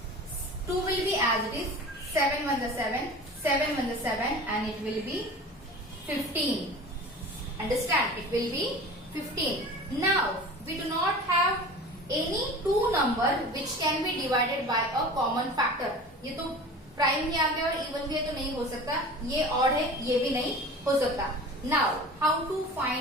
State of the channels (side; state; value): both; normal; correlation 0.37